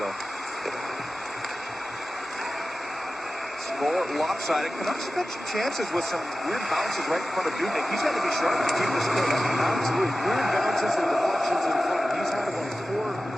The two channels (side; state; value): both; normal; correlation 0.95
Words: Score lopsided. Canucks have had some chances with some weird bounces right in front of Dubnik. He's got to be sharp to keep this clear. Absolutely. Weird bounces and deflections in front.